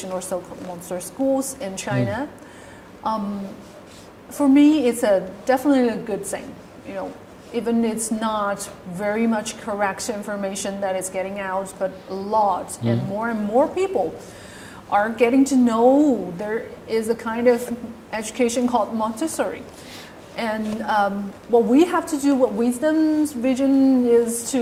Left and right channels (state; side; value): identical; both; correlation 1.00